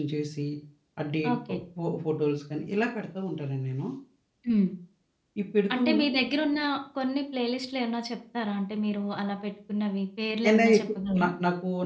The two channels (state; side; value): identical; both; correlation 1.00